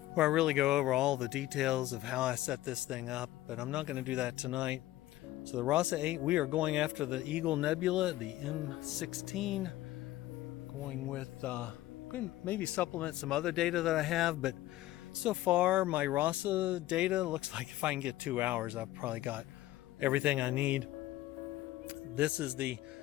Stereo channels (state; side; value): quieter; right; 15.6 dB